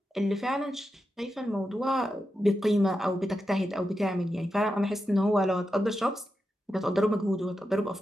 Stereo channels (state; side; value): normal; both; correlation 0.89